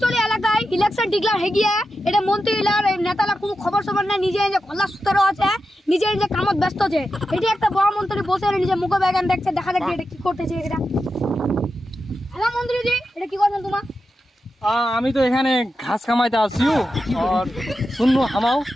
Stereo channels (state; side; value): normal; both; correlation 0.90